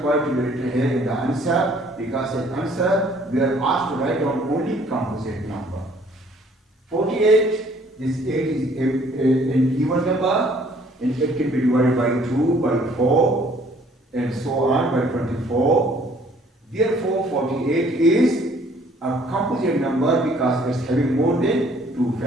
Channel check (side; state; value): both; normal; correlation 0.59